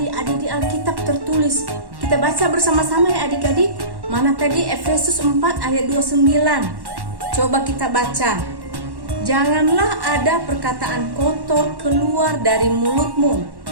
ada di Alkitab tertulis. Kita baca bersama-sama ya adik-adik. Mana tadi? Efesus 4 ayat 29. Coba kita baca. Janganlah ada perkataan kotor keluar dari mulutmu,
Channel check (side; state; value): left; late; 1.1 ms